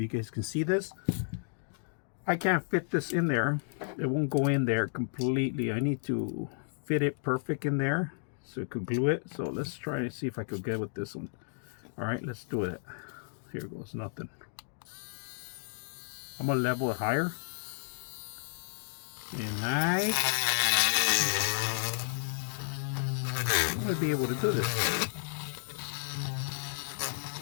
you guys can see this. I can't fit this in there. It won't go in there completely. I need to fit it perfect in there so it could glue it. So let's try and see if I could get with this one. All right, let's do it. Here goes nothing. I'm gonna level it higher. And I'm gonna be able to do this.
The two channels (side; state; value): right; silent; digital silence